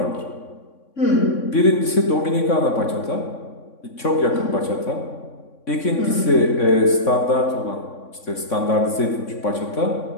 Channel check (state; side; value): late; right; 3.6 ms